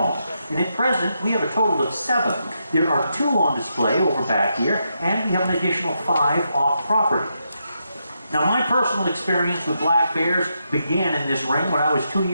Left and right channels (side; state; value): both; inverted; correlation -0.82